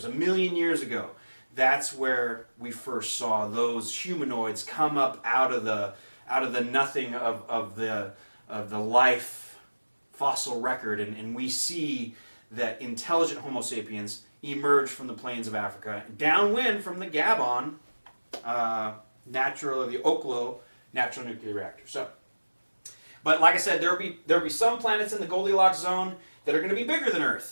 1 million years ago. That's where we first saw those humanoids come up out of the nothing of the life fossil record, and we see that intelligent Homo sapiens emerged from the plains of Africa, downwind from the Gabon the Oklo natural nuclear reactor. So, but like I said, there'll be some planets in the Goldilocks zone that are going to be bigger than Earth,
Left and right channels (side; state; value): both; inverted; correlation -1.00